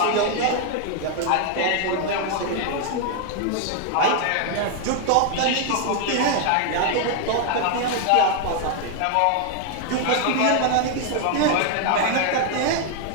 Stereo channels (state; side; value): different; both; correlation 0.00